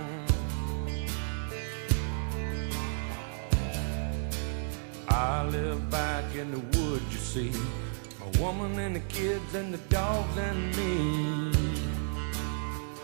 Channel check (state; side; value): silent; left; digital silence